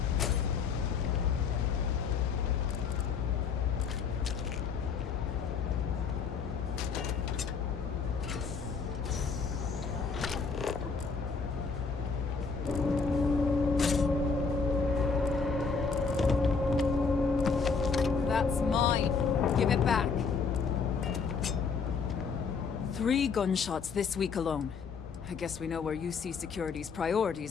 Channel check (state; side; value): quieter; right; 5.3 dB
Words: Back. 3 gunshots this week alone. I guess we know where UC Security's